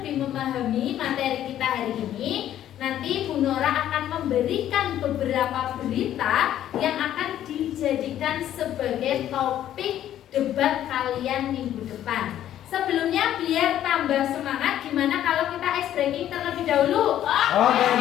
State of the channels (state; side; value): quieter; right; 11.6 dB